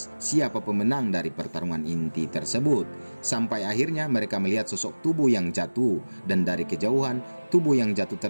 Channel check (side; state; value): both; inverted; correlation -1.00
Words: siapa pemenang dari pertarungan inti tersebut. Sampai akhirnya mereka melihat sosok tubuh yang jatuh. Dan dari kejauhan, tubuh yang jatuh